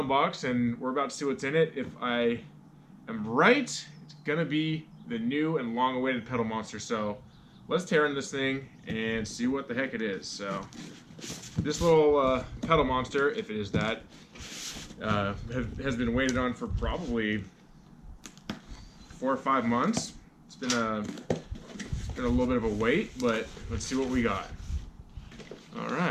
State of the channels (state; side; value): identical; both; correlation 1.00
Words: box, and we're about to see what's in it. If I am right, it's gonna be the new and long-awaited pedal monster. So let's tear in this thing and see what the heck it is. So this little pedal monster, if it is that, has been waited on for probably 4 or 5 months. It's been a little bit of a wait, but let's see what we got. All